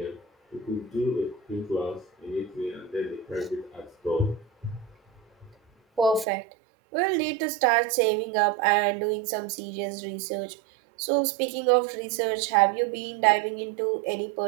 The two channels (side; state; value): left; drops out; at 6.2 s